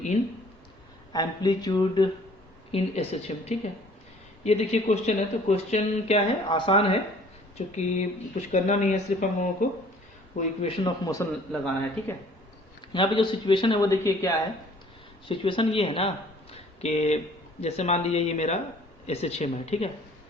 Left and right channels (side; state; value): both; normal; correlation 0.55